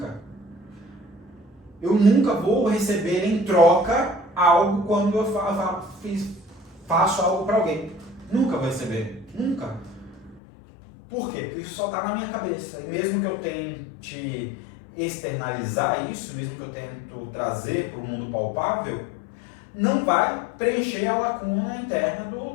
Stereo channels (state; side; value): drops out; right; at 10.4 s